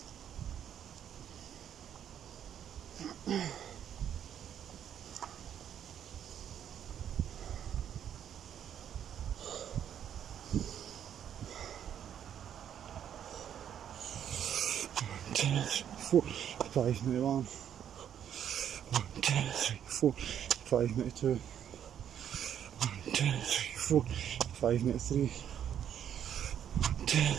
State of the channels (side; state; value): left; quieter; 9.5 dB